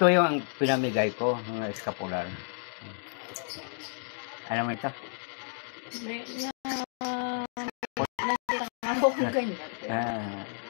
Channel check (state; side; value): silent; right; 57 dB below the other